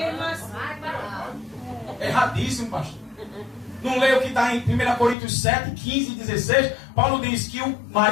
Erradíssimo, pastor. Não leia o que está em 1 Coríntios 7, 15 e 16. Paulo diz que o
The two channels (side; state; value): right; drops out; at 5.2 s